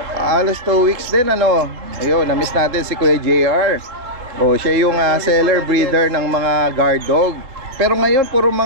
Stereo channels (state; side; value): late; left; 3.7 ms